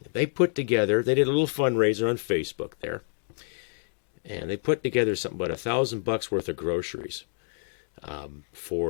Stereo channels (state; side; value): silent; right; digital silence